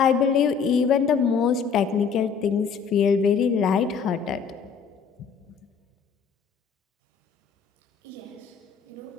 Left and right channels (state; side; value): quieter; right; 6.3 dB